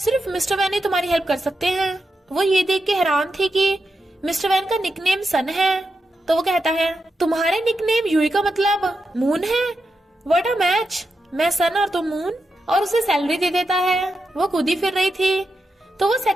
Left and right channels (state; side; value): normal; both; correlation 0.87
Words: मिस्टर वैन ही तुम्हारी हेल्प कर सकते हैं। वो ये देख के हैरान थी कि मिस्टर वैन का निकनेम सन है। तो वो कहता है, तुम्हारे निकनेम यूई का मतलब मून है? व्हाट अ मैच, मैं सन और तुम मून। और उसे सैलरी दे देता है। वो खुद ही फिर रही थी, तो वो